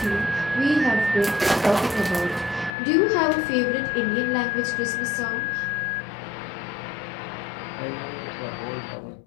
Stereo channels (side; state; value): right; drops out; at 2.7 s